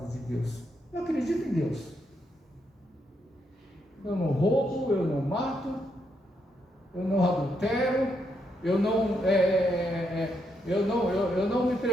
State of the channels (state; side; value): normal; both; correlation 0.79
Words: de Deus? Eu acredito em Deus. Eu não roubo, eu não mato, eu não adultero, eu não me